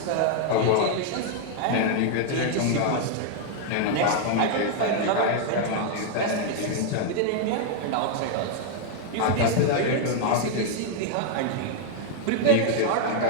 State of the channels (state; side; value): different; both; correlation 0.00